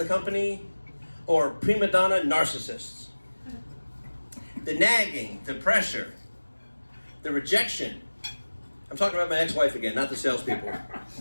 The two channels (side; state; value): both; inverted; correlation -1.00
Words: company or prima donna narcissists. The nagging, the pressure, the rejection. I'm talking about my ex-wife again, not the salespeople.